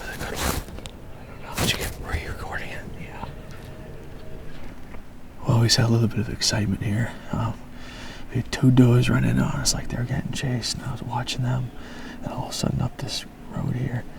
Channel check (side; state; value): both; identical; correlation 1.00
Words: I don't know. Did you get, were you recording it? Yeah. Well, we had a little bit of excitement here. We had two does running on us like they were getting chased, and I was watching them, and all of a sudden up this road here,